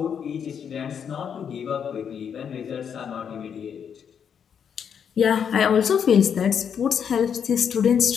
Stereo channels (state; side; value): quieter; right; 7.7 dB